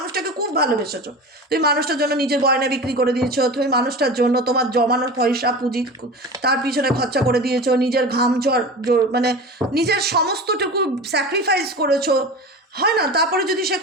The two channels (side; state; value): both; normal; correlation 0.31